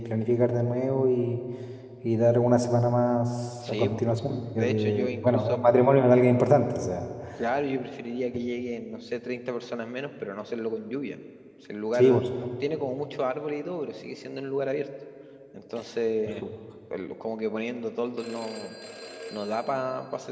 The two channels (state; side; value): identical; both; correlation 1.00